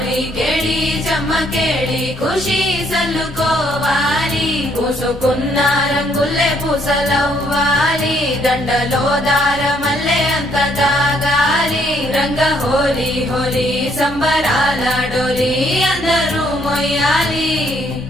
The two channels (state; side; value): noise; right; rumble, 18 dB below the sound